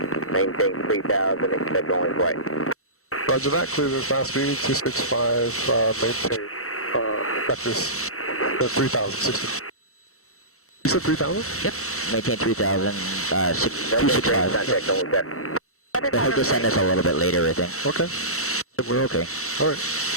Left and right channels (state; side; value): late; right; 0.64 ms